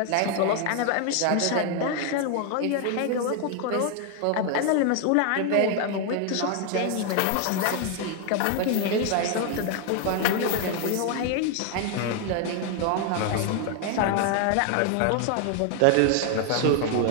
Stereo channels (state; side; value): different; both; correlation 0.00